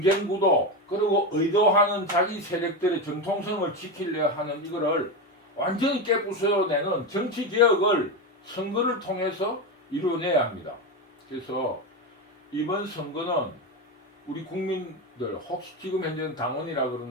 구도 그리고 의도하는 자기 세력들의 정통성을 지키려 하는 이거를 완전히 깨부숴내는 정치 개혁을 선거를 통해서 이루어내야 합니다. 그래서 이번 선거는 우리 국민들, 혹시 지금 현재는 당원이라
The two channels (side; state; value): both; normal; correlation 0.15